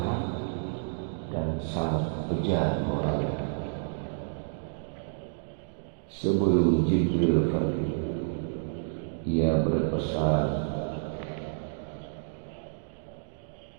dan sangat bejat moralnya. Sebelum Jibril pergi, ia berpesan,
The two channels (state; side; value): silent; left; digital silence